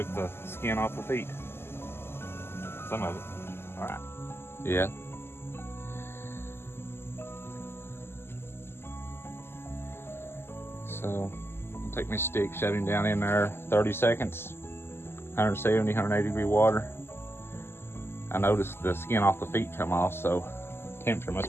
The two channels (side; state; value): right; late; 0.12 ms